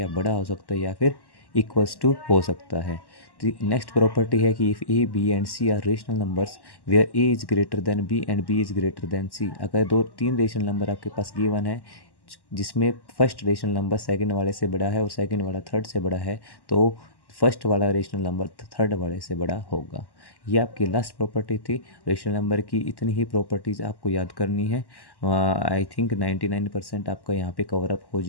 बड़ा हो सकता है या फिर इक्वल्स टू हो सकता है। तो नेक्स्ट प्रॉपर्टी है कि if A, B and C are rational numbers where A is greater than B and B is greater than C। अगर 2-3 रेशनल नंबर आपके पास गिवन है जिसमें फर्स्ट रेशनल नंबर सेकंड वाले से बड़ा है और सेकंड वाला थर्ड से बड़ा है, तो फर्स्ट वाला रेशनल नंबर थर्ड वाले से बड़ा होगा। ये आपकी लास्ट प्रॉपर्टी थी रेशनल नंबर की। इतनी ही प्रॉपर्टीज़ आपको याद करनी है। आई थिंक 99% आपका यहाँ पे कवर अप हो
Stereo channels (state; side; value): late; right; 1.1 ms